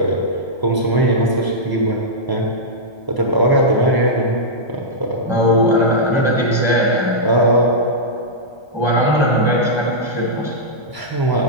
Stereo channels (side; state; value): right; late; 1.2 ms